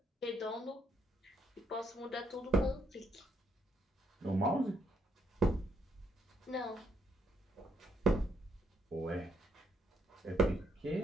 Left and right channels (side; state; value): both; normal; correlation 0.74